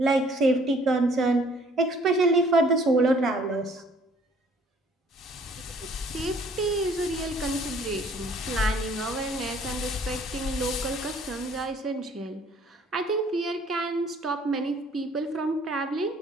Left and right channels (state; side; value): normal; both; correlation 0.58